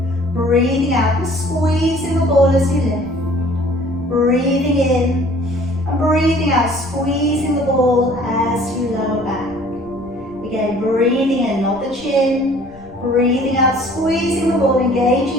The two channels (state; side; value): noise; right; rumble, 23 dB below the sound